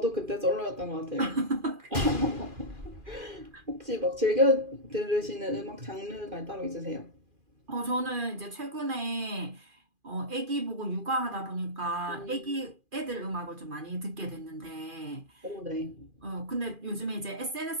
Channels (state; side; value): late; left; 2.4 ms